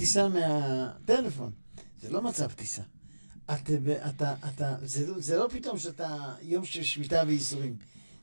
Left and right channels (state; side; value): inverted; both; correlation -1.00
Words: מהטלפון. זה לא מצב טיסה. זה לא פתאום שאתה יום של שביתה וייסורים.